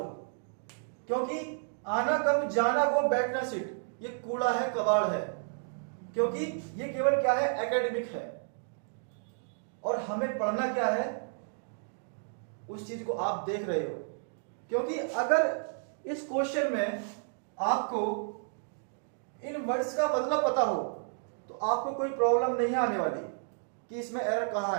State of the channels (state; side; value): silent; left; digital silence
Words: क्योंकि आना कम जाना गो बैठना सिट ये कूड़ा है, कबाड़ है, क्योंकि ये केवल क्या है, एकेडमिक है। और हमें पढ़ना क्या है, उस चीज को आप देख रहे हो। क्योंकि अगर इस क्वेश्चन में आपको इन वर्ड्स का मतलब पता हो तो आपको कोई प्रॉब्लम नहीं आने वाली कि इसमें एरर कहां